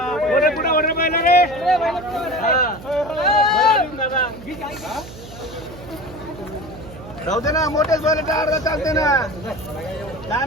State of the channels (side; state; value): right; noise; hum, 15 dB below the sound